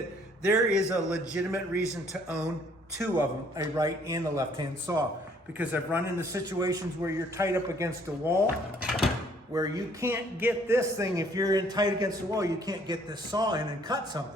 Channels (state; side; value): normal; both; correlation 0.62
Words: there is a legitimate reason to own two of them, a right and a left-hand saw, because I've run into situations where you're tight up against a wall, where you can't get this thing, if you're in tight against the wall, you can't get this saw in and cut